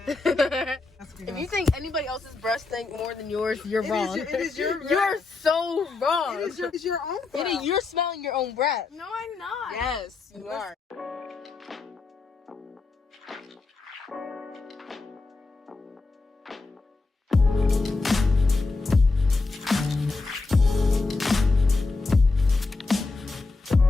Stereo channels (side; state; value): right; quieter; 3.7 dB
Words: If you think anybody else's breath stink more than yours, you're wrong. It is your You're so wrong. It is your own breath. You're smelling your own breath. No, I'm not. Yes, you are.